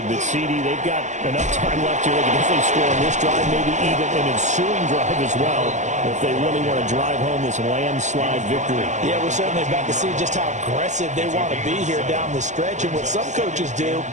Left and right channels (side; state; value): left; late; 0.35 ms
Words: but CD, they've got enough time left here. They can definitely score on this drive, maybe even an ensuing drive as well, if they really want to drive home this landslide victory. Yeah, we're certainly about to see just how aggressive they want to be here down the stretch. And what some coaches do